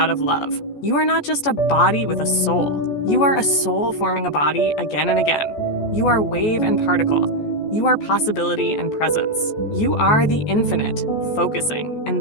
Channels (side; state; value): right; late; 14 ms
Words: of love. You are not just a body with a soul. You are a soul forming a body again and again. You are wave and particle. You are possibility and presence. You are the infinite, focusing. And